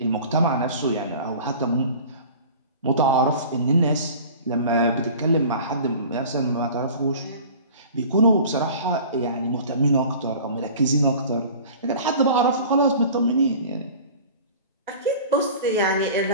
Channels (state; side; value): inverted; both; correlation -0.42